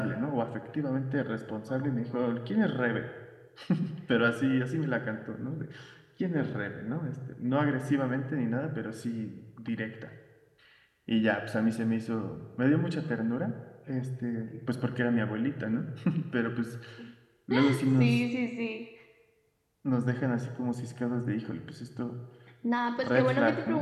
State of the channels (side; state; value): both; identical; correlation 1.00